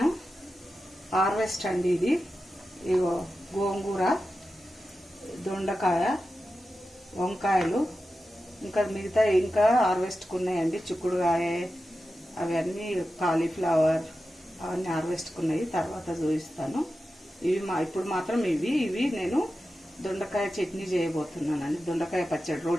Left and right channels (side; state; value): both; normal; correlation 0.92